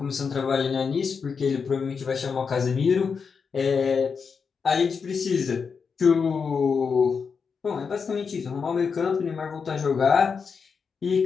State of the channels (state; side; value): quieter; right; 5.7 dB